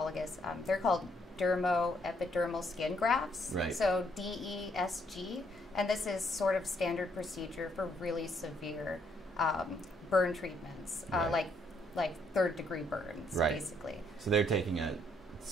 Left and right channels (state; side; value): normal; both; correlation 0.71